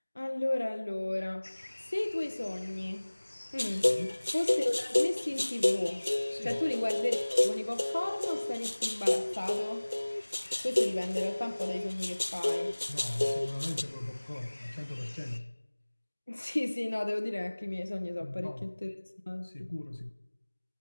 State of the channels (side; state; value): both; inverted; correlation -1.00